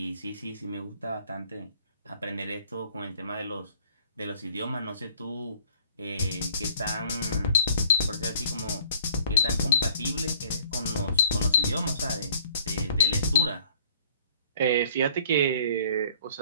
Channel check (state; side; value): inverted; both; correlation -0.55